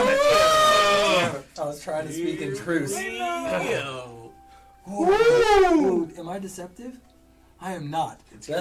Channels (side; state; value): both; identical; correlation 1.00